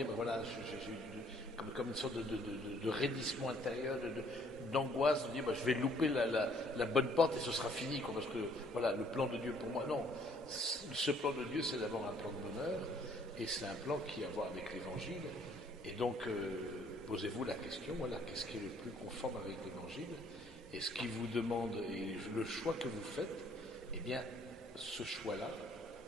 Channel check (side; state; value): both; normal; correlation 0.62